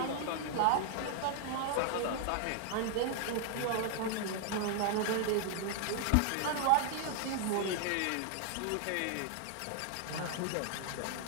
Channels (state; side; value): different; both; correlation 0.00